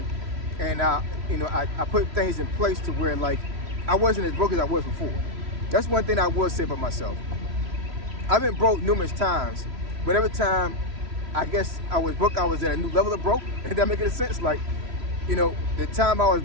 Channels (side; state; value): left; late; 3.1 ms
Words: and I put things in place to where like I wasn't as broke as I was before. That's one thing I will say about myself. I've been broke numerous times, but every time I guess I was broke, I was at a new level of broke. If that make any sense? Like, the time I was